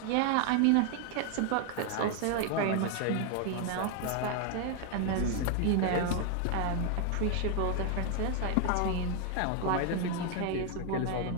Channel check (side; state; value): both; different; correlation 0.00